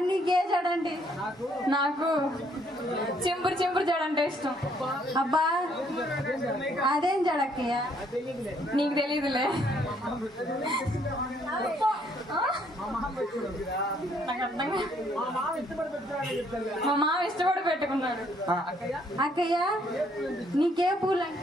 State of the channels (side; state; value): both; normal; correlation 0.67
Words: నీకే జడండి నాకు చింపురు జడంటే ఇష్టం అబ్బా అదేం జడక్కయ్య నీకు తెలీదులే మా మామ ఇష్టపడి పెట్టుకున్నాడు అక్కయ్య నీకే పూలు